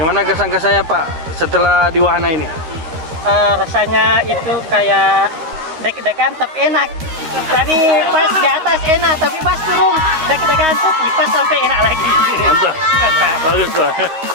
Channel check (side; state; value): left; late; 13 ms